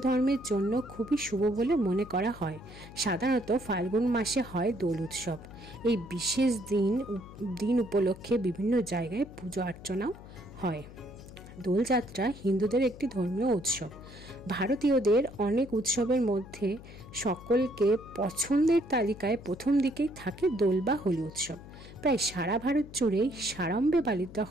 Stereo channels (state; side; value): noise; left; hum, 17 dB below the sound